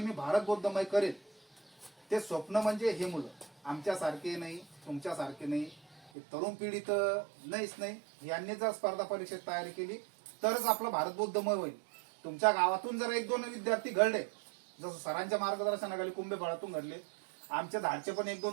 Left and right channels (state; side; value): drops out; left; at 6.1 s